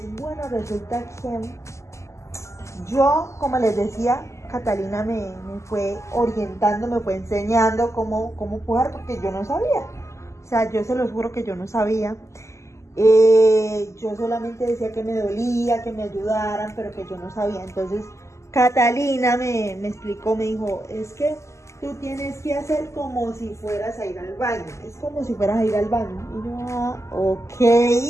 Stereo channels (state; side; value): late; right; 0.14 ms